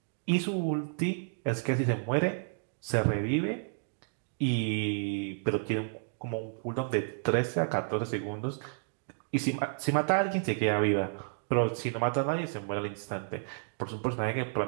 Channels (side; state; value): left; silent; digital silence